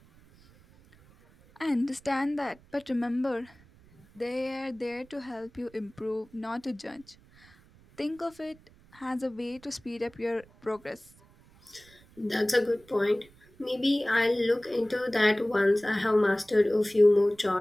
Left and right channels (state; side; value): noise; right; rumble, 27 dB below the sound